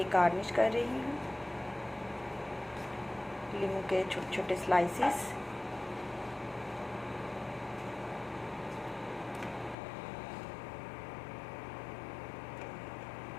गार्निश कर रही हूँ लीमू के छोटे छोटे स्लाइसेस।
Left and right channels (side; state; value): right; drops out; at 9.8 s